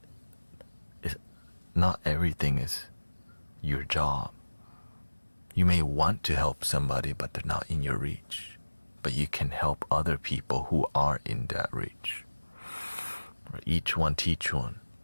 not everything is your job. You may want to help somebody, but they're not in your reach. But you can help other people who are in that reach. Each one teach one.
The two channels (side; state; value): both; inverted; correlation -1.00